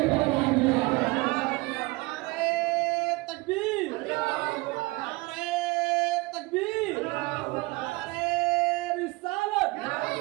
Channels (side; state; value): left; quieter; 23.9 dB